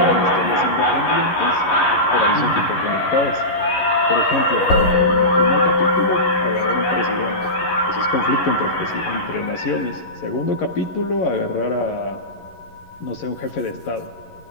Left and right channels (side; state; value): right; late; 11 ms